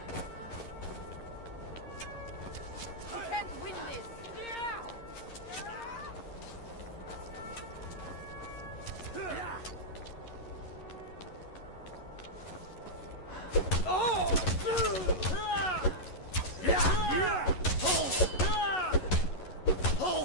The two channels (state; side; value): late; right; 11 ms